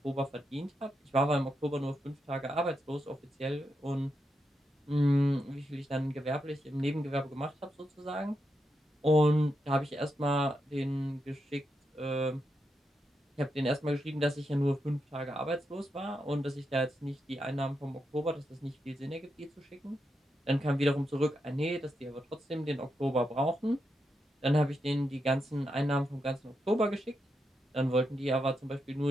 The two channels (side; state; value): both; normal; correlation 0.84